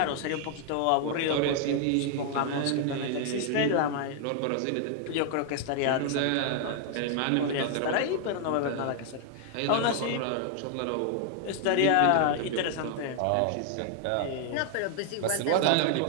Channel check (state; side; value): different; both; correlation 0.00